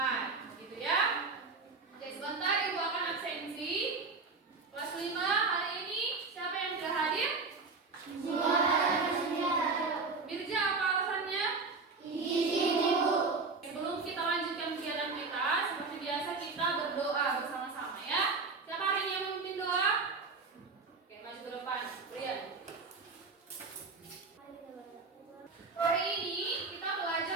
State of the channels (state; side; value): quieter; left; 4.2 dB